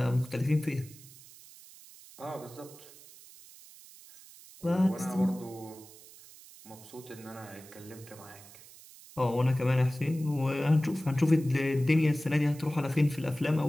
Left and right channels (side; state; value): right; noise; hiss, 20 dB below the sound